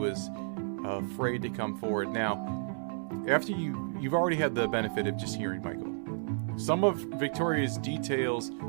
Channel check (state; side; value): silent; left; 57 dB below the other